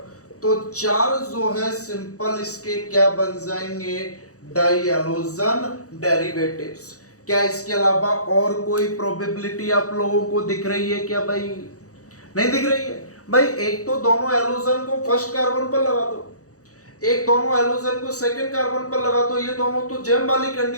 तो 4 जो है सिंपल इसके क्या बन जाएंगे? डाइहैलोजन डेरिवेटिव्स। क्या इसके अलावा और कोई प्रोबेबिलिटी आप लोगों को दिख रही है क्या भाई? नहीं दिख रही है भाई। एक तो दोनों हैलोजन को फर्स्ट कार्बन पर लगा दो, एक दोनों हैलोजन को सेकंड कार्बन पर लगा दो। ये दोनों तो जैम वाली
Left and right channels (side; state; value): right; late; 0.66 ms